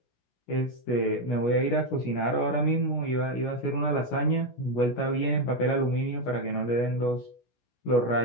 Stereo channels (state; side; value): late; right; 17 ms